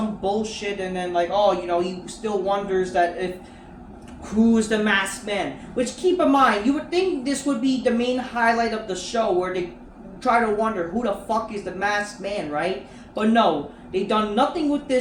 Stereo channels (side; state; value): both; identical; correlation 1.00